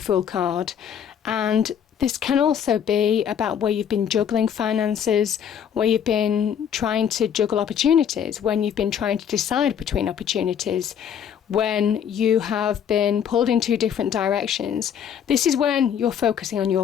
card. And this can also be about where you've been juggling finances, where you've been trying to juggle opportunities, when you've been trying to decide between opportunities, when you have been pulled in two different directions. This is when you're focusing on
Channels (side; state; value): right; quieter; 8.5 dB